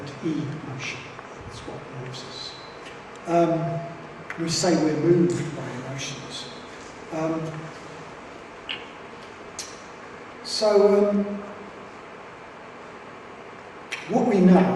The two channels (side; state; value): both; identical; correlation 1.00